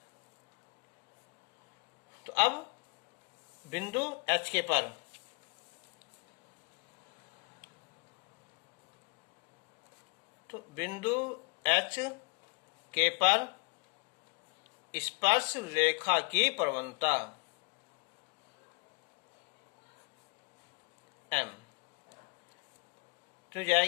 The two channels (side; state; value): right; quieter; 33.5 dB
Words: तो अब बिंदु h के पर तो बिंदु h के पर स्पर्श रेखा की प्रवणता m। तो